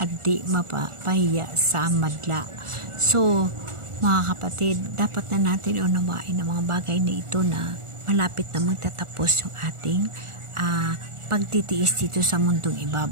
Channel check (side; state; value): left; late; 1.4 ms